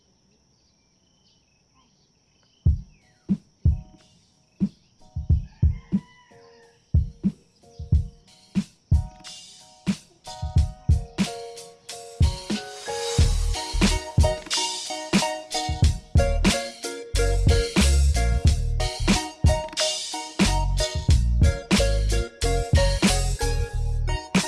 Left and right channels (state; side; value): identical; both; correlation 1.00